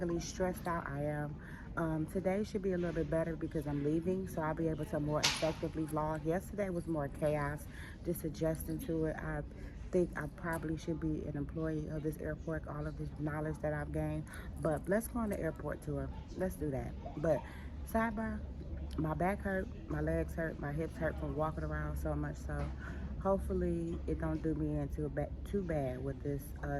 stressed out I am. Today should be a little bit better because I'm leaving, so I'll be able to more effectively vlog. Yesterday was more chaos, just adjusting to it. I think I probably should be an employee of this airport, all of this knowledge that I've gained. But let's go on the airport tour. Let's do that. But sidebar, my back hurt, my legs hurt, my hips hurt from walking around so much. So hopefully it don't do me in too bad with this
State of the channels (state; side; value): identical; both; correlation 1.00